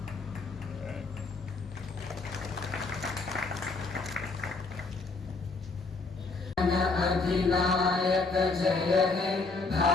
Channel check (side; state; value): right; quieter; 3.8 dB